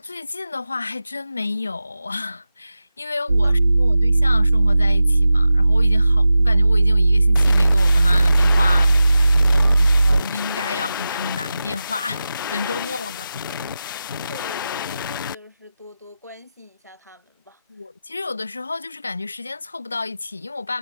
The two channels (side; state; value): both; inverted; correlation -0.93